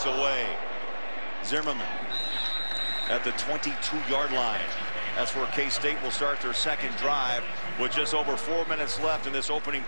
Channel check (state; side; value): inverted; both; correlation -1.00